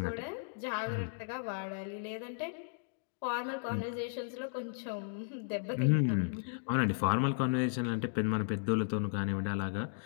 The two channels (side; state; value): right; silent; digital silence